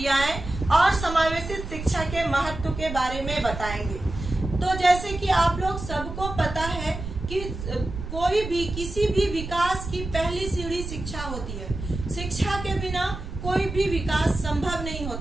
और समावेशित शिक्षा के महत्व के बारे में बताएंगे। तो जैसे कि आप लोग सबको पता है कि कोई भी किसी भी विकास की पहली सीढ़ी शिक्षा होती है। शिक्षा के बिना कोई भी विकास संभव नहीं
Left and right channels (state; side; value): noise; right; rumble, 8 dB below the sound